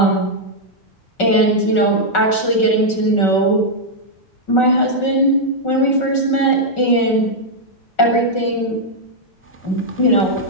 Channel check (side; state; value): right; late; 5.4 ms